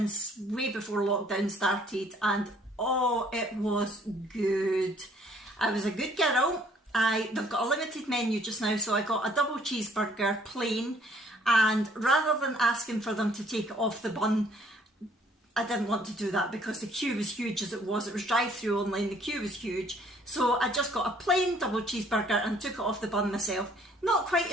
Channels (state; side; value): normal; both; correlation 0.61